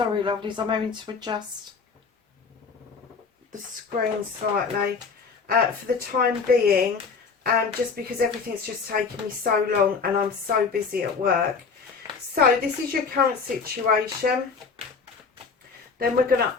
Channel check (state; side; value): quieter; right; 5.2 dB